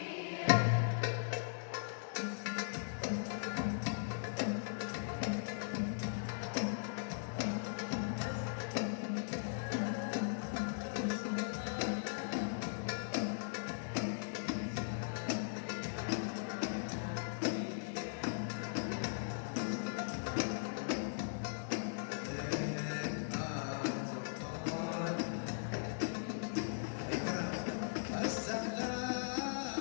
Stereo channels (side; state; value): right; silent; digital silence